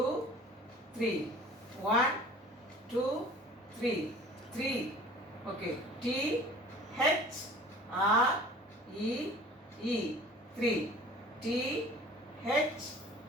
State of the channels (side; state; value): both; normal; correlation 0.46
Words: 3. 1 2 3. 3. Okay. T H R E E. 3. T H